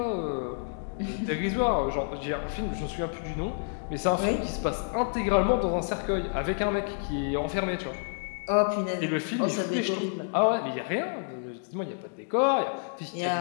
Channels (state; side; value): silent; right; digital silence